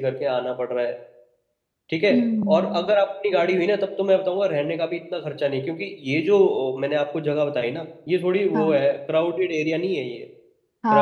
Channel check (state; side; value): identical; both; correlation 1.00